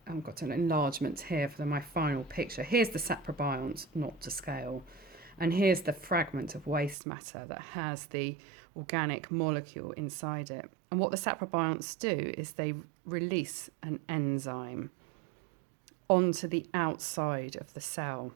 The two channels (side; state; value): left; drops out; at 7.0 s